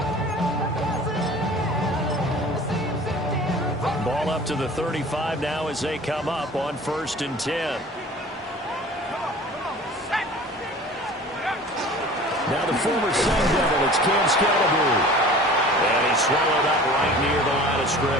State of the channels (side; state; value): both; normal; correlation 0.43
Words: Ball up to the 35 now as they come up on 1st and 10. Now the former Sun Devil, it's Cam Scalaboo. And he's swallowed up right near the line of